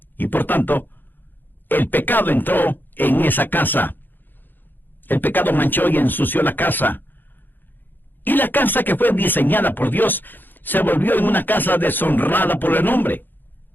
Y por tanto, el pecado entró en esa casa. El pecado manchó y ensució la casa. Y la casa que fue diseñada por Dios se volvió en una casa deshonrada por el hombre.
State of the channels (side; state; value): right; late; 0.091 ms